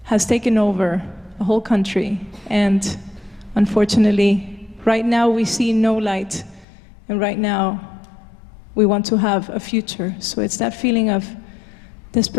has taken over a whole country. And unfortunately, right now we see no light, and right now we want to have a future. So it's that feeling of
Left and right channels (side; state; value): right; drops out; at 6.7 s